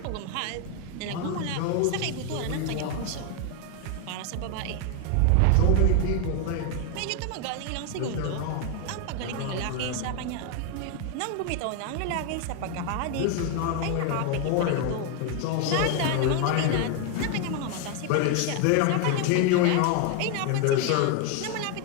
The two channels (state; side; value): different; both; correlation 0.01